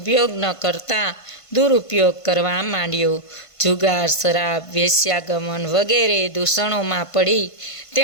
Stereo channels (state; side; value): late; right; 1.5 ms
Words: ન કરતા દુરુપયોગ કરવા માંડ્યો. જુગાર, શરાબ, વેશ્યાગમન વગેરે દૂષણોમાં પડી